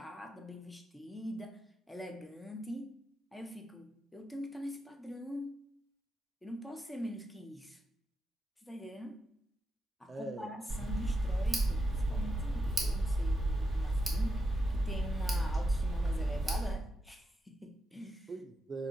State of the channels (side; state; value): both; normal; correlation 0.86